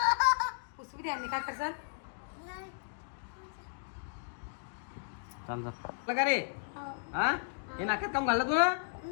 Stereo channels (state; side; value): silent; right; digital silence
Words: पुसवी द्या. काय करसाल? का रे? हे नाक्यात काम घाललं तू